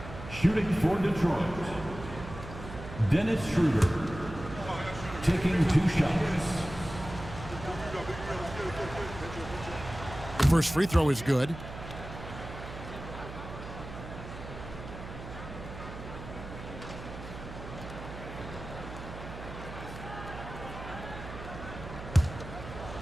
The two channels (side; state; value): right; noise; hum, 11 dB below the sound